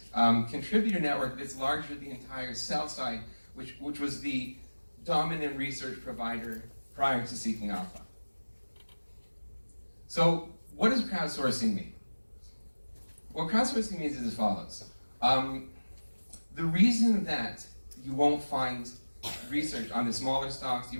contributor network that's larger than the entire sell side, which was the dominant research provider prior to Seeking Alpha. So what does crowdsourcing mean? What crowdsourcing means is as follows. The reason that you won't find research on the smaller stocks, you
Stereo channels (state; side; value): inverted; both; correlation -1.00